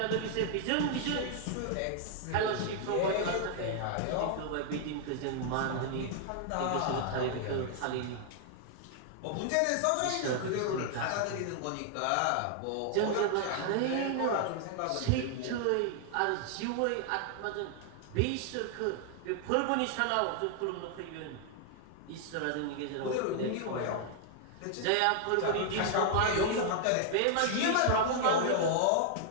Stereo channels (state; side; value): different; both; correlation 0.00